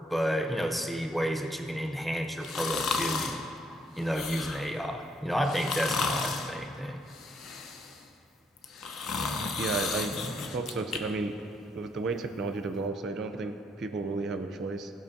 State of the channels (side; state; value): both; normal; correlation 0.71